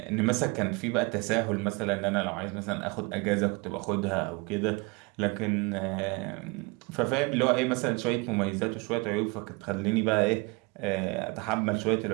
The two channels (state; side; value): quieter; left; 27.7 dB